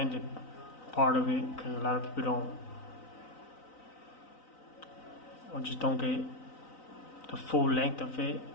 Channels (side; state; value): right; late; 3.9 ms